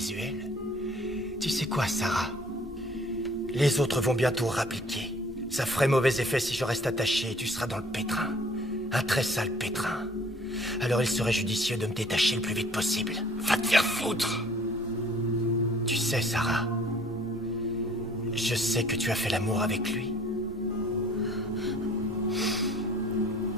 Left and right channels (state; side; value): normal; both; correlation 0.54